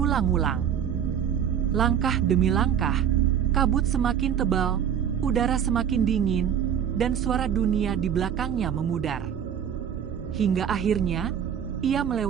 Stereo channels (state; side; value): quieter; left; 8.8 dB